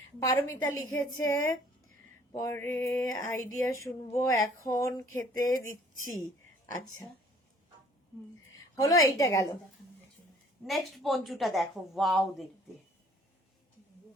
পারমিতা লিখেছে পরে আইডিয়া শুনবো, এখন খেতে দিচ্ছি। আচ্ছা, হলো, এইটা গেল। নেক্সট পঞ্চুটা দেখো, ওয়াও দেখতে।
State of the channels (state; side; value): normal; both; correlation 0.56